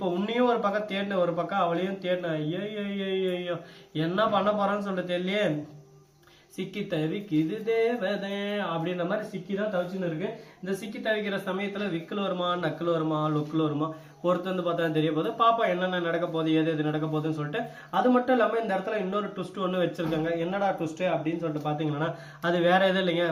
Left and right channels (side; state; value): both; identical; correlation 1.00